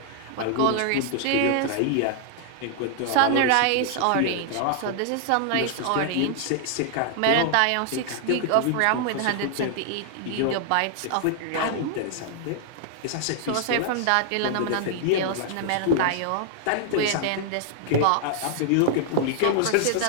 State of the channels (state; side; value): different; both; correlation -0.01